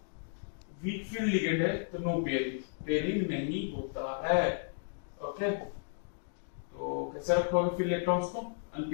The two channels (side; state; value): right; silent; digital silence